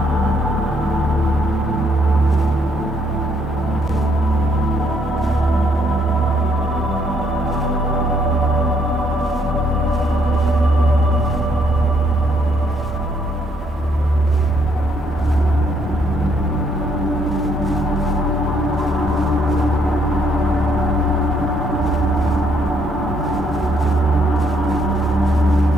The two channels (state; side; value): normal; both; correlation 0.70